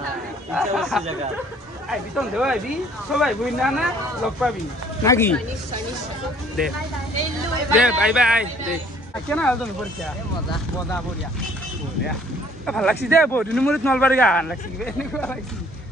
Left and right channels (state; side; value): normal; both; correlation 0.57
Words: আইবি তন দেও আইবি সবাই বই না না লগ পাবি নাকি দে বাই দে কেন আল তুমি পরীক্ষা মজা বঢ়িয়া ভাল লাগছি দে বহুত দিন মূৰত নলবাৰী গান লাগছি এনেকুৱা লাগছি